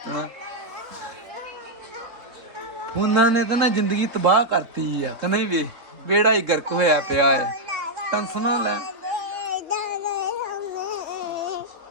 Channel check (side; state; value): left; late; 3.9 ms